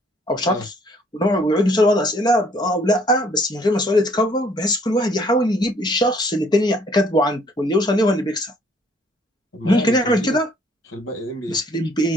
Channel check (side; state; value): both; normal; correlation 0.62